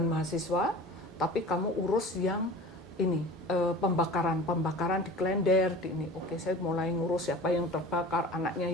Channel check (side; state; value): both; normal; correlation 0.39